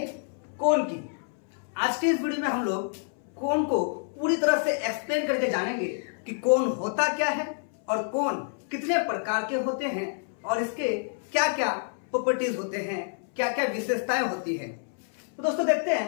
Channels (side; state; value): right; silent; 59 dB below the other